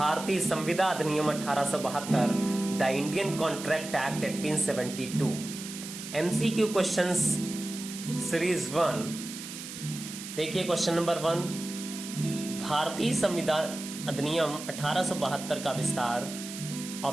संविदा अधिनियम 1872 the Indian contract act 1872 MCQ questions series 1। देखिए क्वेश्चन नंबर 1, भारतीय संविदा अधिनियम 1872 का विस्तार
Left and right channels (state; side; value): noise; right; hiss, 10 dB below the sound